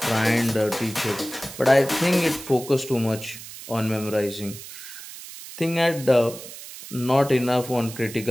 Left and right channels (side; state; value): right; noise; hiss, 14 dB below the sound